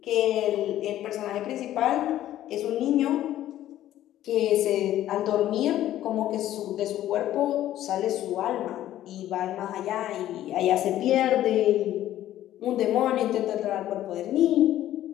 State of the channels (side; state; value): right; quieter; 13.0 dB